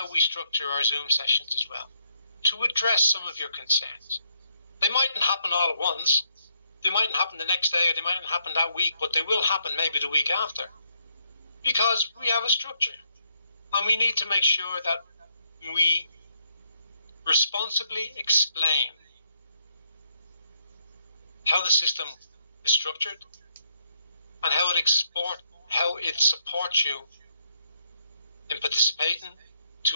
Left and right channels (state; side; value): inverted; both; correlation -0.74